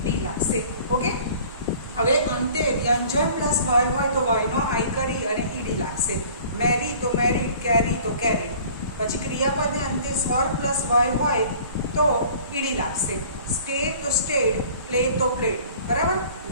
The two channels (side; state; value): both; inverted; correlation -0.49